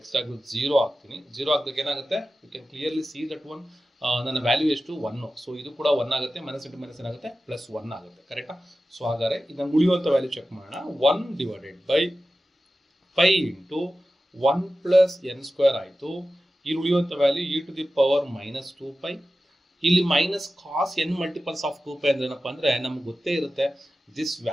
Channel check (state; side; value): normal; both; correlation 0.94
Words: ಟಾಗ್ 0 ಹಾಕ್ತೀನಿ. 0 ಹಾಕಿದಾಗ ಏನಾಗುತ್ತೆ, you can clearly see that one ನನ್ನ ವ್ಯಾಲ್ಯೂ ಎಷ್ಟು 1. ಸೊ ಇದು ಕೂಡ 1 ಆಗುತ್ತೆ, ಮೈನಸ್ ಇಂಟು ಮೈನಸ್ ಏನಾಗುತ್ತೆ ಪ್ಲಸ್ 1 ಆಗುತ್ತೆ. ಕರೆಕ್ಟಾ? ಸೊ ಹಾಗಾದ್ರೆ ಇದನ್ನು ಉಳಿಯುವಂಥ ವ್ಯಾಲ್ಯೂ ಚೆಕ್ ಮಾಡೋಣ. 1 divided by π into 1 plus n square ಆಯಿತು. ಇಲ್ಲಿ ಉಳಿಯುವಂಥ value e to the power minus 2π. ಇಲ್ಲಿ minus cos n multiples of 2π ಅಂದ್ರೆ ಏನಪ್ಪ ಅಂದ್ರೆ ನಮ್ಗೆ ಗೊತ್ತೇ ಇರುತ್ತೆ ದಿಸ್